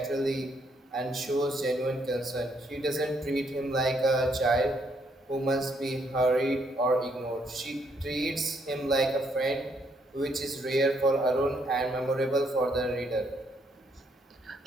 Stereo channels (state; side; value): normal; both; correlation 0.72